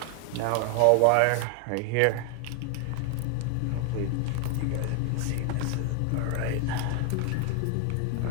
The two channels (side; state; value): both; different; correlation 0.00